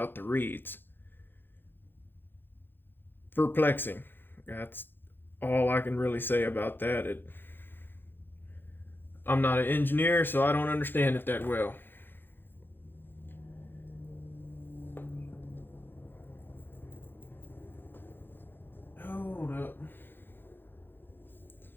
the reeds. Perplexing. That's all I can really say about that. I'm not an engineer, so I don't understand it that well. Hold up.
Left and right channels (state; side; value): late; right; 0.099 ms